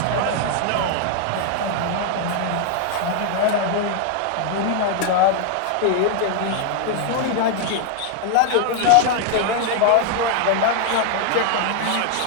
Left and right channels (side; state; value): both; different; correlation 0.00